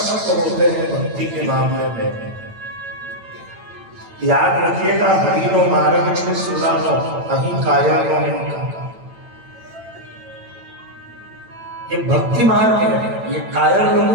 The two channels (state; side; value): late; left; 8.9 ms